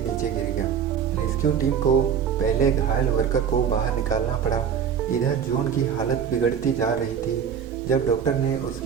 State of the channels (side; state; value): left; quieter; 7.7 dB